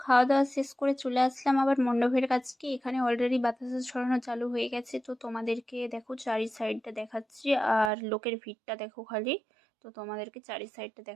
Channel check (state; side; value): drops out; left; at 7.9 s